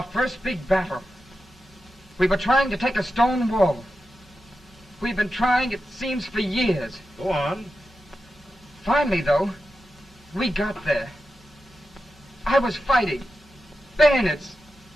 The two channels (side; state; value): both; normal; correlation 0.91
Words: first big battle. We were trying to take a stone wall. We've been trying, it seems, for years. Go on. Finally, though, we got there. I was fighting. Bayonets.